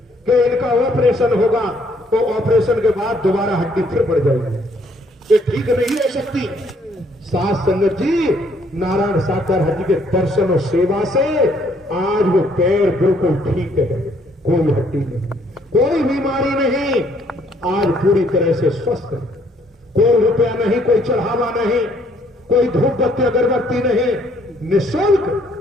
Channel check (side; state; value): both; normal; correlation 0.65